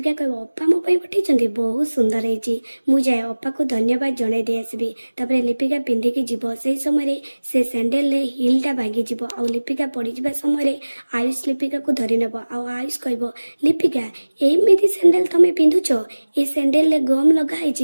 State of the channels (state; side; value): inverted; both; correlation -1.00